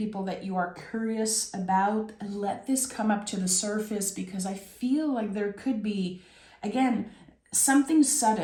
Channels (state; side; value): identical; both; correlation 1.00